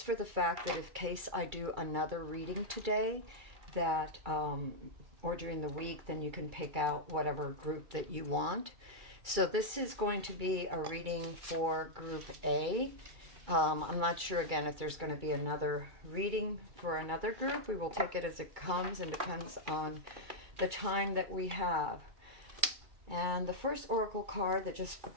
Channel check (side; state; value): left; late; 2.3 ms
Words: for the fact that in case I do another reading today, that or during the week, then you can pick out whatever group that you want. So this is going to be a reading for Group A. I'm not sure again if there's going to be another reading for another group. We will take it as it comes and depends on the time that we have. And the first oracle card that just